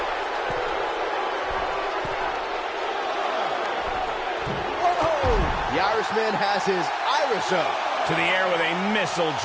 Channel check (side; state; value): both; identical; correlation 1.00